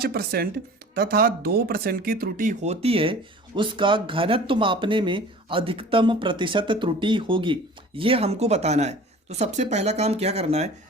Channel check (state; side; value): normal; both; correlation 0.43